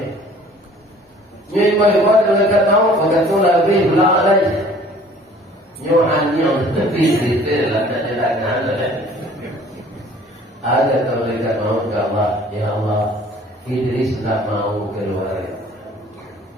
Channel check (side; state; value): both; normal; correlation 0.52